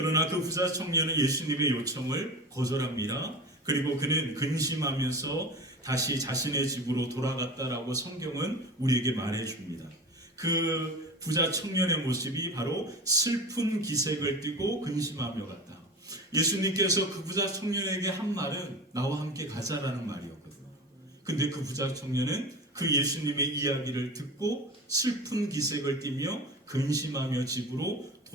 그 부자 청년은 예수님의 요청을 거절합니다. 그리고 그는 근심하면서 다시 자신의 집으로 돌아갔다라고 성경은 우리에게 말해줍니다. 그 부자 청년의 모습이 바로 슬픈 기색을 띠고 근심하며 갔다. 예수님께서 그 부자 청년에게 한 말은 나와 함께 가자라는 말이었거든요. 근데 그 부자 청년은 그 예수님의 이야기를 듣고 슬픈 기색을 띠며 근심하며 집으로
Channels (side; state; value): both; normal; correlation 0.32